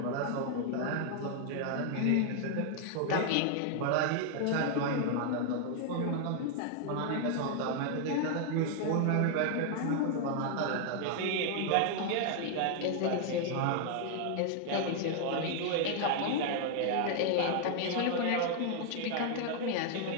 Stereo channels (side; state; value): both; different; correlation 0.00